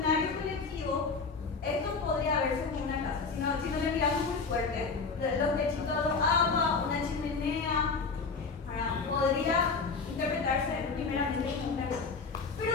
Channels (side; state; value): right; quieter; 4.6 dB